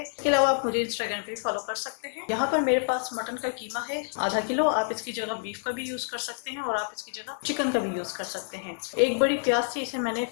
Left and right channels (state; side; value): silent; right; digital silence